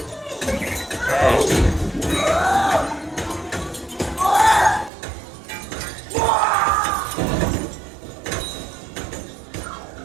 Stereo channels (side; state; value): left; drops out; at 4.9 s